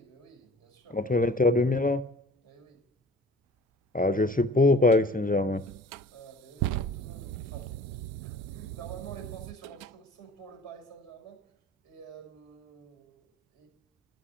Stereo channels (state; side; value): normal; both; correlation 0.46